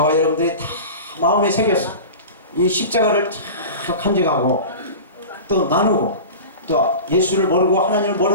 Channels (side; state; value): both; inverted; correlation -0.33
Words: 여러분들이 다 마음에 새겨서 이 십자가를 잘 간직하고 또 나누고 또 예수를 모르고 하나님을